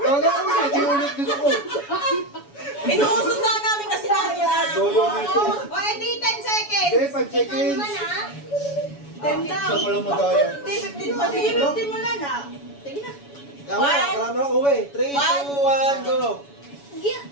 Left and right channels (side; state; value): right; late; 7.1 ms